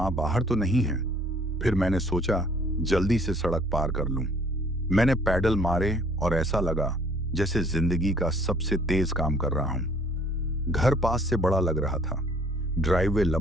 बाहर तो नहीं है। फिर मैंने सोचा जल्दी से सड़क पार कर लूं। मैंने पैडल मारे और ऐसा लगा जैसे जिंदगी का सबसे तेज काम कर रहा हूं। घर पास से बड़ा लग रहा था। ड्राइववे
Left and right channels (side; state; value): both; normal; correlation 0.58